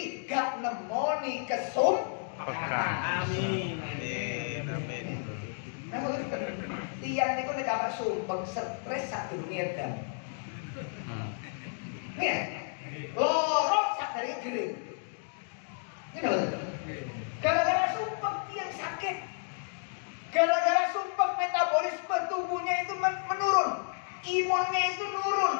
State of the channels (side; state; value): right; silent; digital silence